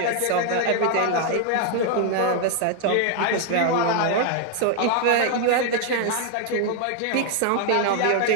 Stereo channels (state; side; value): different; both; correlation 0.00